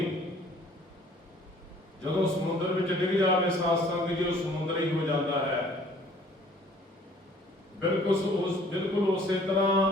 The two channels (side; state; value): both; normal; correlation 0.55